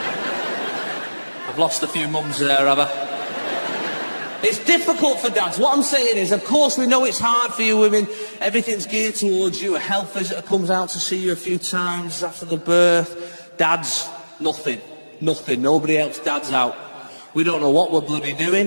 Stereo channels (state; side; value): inverted; both; correlation -1.00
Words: I've lost a few mums there, have I? It's difficult for dads. What I'm saying is, of course, we know it's hard for you women. Everything's geared towards you. A health visitor comes out to see you a few times after the birth. Dads, nothing. Nobody else dads out. We don't know what we're bloody